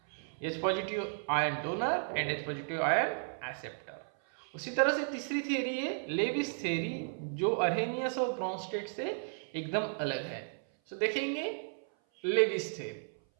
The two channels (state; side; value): silent; left; 55 dB below the other